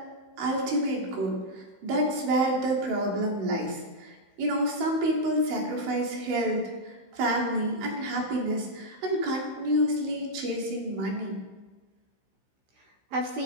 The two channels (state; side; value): late; left; 15 ms